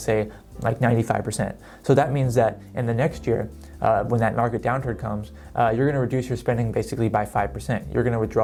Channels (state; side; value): identical; both; correlation 1.00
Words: say, like 95%. So that means that in the next year, when that market downturn comes, you're going to reduce your spending basically by 5%. You're going to